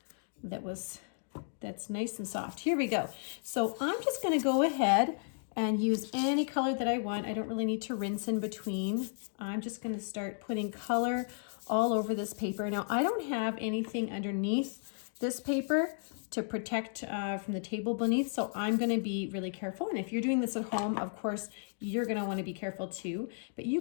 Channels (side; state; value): right; silent; digital silence